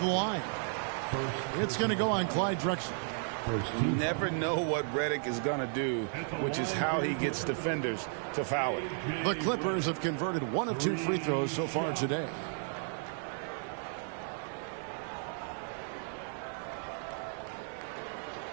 line. It's going to go on Clyde Drexler. You never know what Redick is going to do, which is how he gets defenders to foul it. The Clippers have converted 1 of 2 free throws so far today.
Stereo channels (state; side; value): silent; left; 55 dB below the other